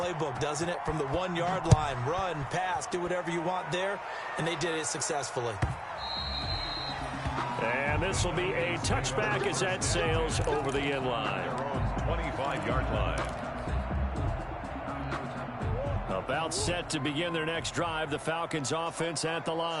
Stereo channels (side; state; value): both; identical; correlation 1.00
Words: doesn't it? From the 1 yard line, run, pass, do whatever you want there. And they did it successfully. And this will be a touchback as that sails over the end line. 25-yard line. About set to begin their next drive, the Falcons offense at the